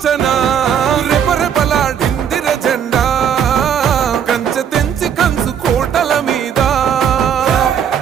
రెపరెపలాడిందిర జెండా కంచె తెంచి కంచు కోటల మీద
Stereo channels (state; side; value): quieter; left; 8.4 dB